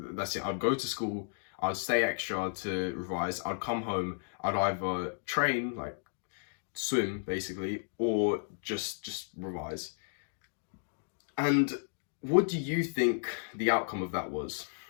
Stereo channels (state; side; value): silent; right; digital silence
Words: that's it. I'd go to school, I'd stay extra to revise, I'd come home, I'd either train, like swim basically, or just revise. And what do you think the outcome of that was?